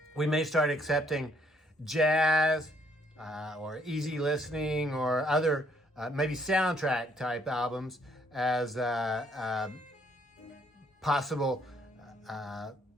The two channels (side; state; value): both; normal; correlation 0.68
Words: We may start accepting jazz or easy listening or other maybe soundtrack type albums as possible